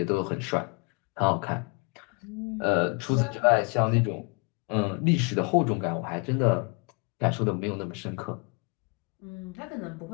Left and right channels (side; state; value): right; quieter; 32.0 dB